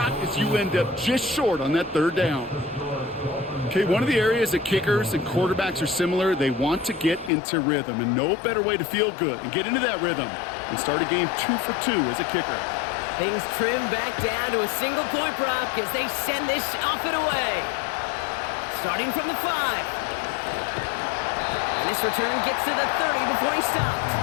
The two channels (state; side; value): drops out; right; at 7.3 s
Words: as you end up just short on that third down? Okay, one of the areas that kickers and quarterbacks are similar, they want to get into rhythm, and no better way to feel good and get into that rhythm and start a game 2 for 2 as a kicker. Things trim back down to a single point, Brock, as they send this off and away. Starting from the 5. And this return gets to the 30 before he stopped.